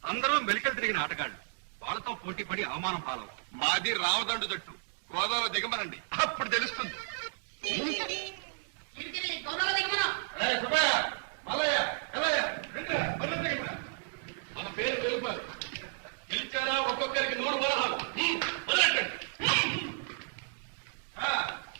అందరూ మెలికలు తిరిగిన ఆటగాళ్ళు. వాళ్ళతో పోటీ పడి అవమానం పాలవుతారు. మాది రామదండు జట్టు. గోదావరి దిగమనండి, అప్పుడు తెలుస్తుంది. మన పేరు నిలుపాలి. గెలిచారా ఒక్కొక్కరికి 100 వరహాలు. వదలెట్టండి.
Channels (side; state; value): left; silent; digital silence